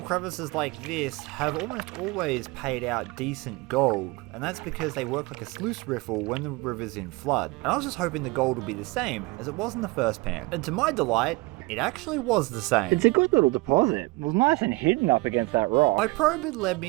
crevices like this have almost always paid out decent gold, and that's because they work like a sluice riffle when the river's in flood. And I was just hoping the gold would be the same as it was in the first pan. And to my delight, It actually was the same. It's a good little deposit. It was nice and hidden up against that rock. My probe had led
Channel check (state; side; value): quieter; left; 24.1 dB